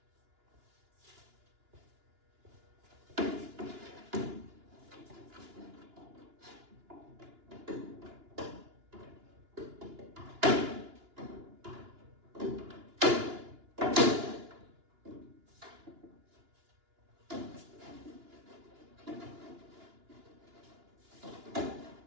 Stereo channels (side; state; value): left; late; 2.9 ms